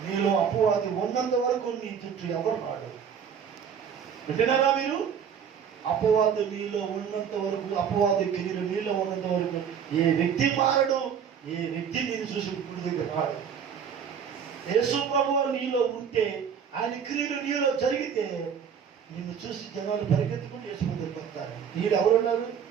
నీలో అపవాది ఉన్నంత వరకు నీ చుట్టూ ఎవరు రాడు. వింటున్నారా మీరు? అపవాది నీలో ఉన్నంత వరకు, అపవాది క్రియలు నీలో ఉన్నంత వరకు ఏ వ్యక్తి మారడు, ఏ వ్యక్తి నేను చూసి గుడి దగ్గర రాడు. యేసు ప్రభువు నీలో ఉంటే, ఆయన క్రియలు నీలో జరిగితే నిన్ను చూసి జనాలు పరిగెత్తుకుని యేసు దగ్గరికి వస్తారు. నీడు ఎవరున్నారు?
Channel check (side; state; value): left; quieter; 7.6 dB